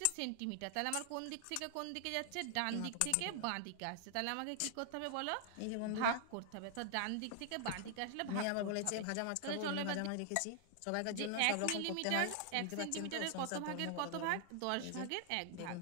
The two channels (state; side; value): different; both; correlation 0.00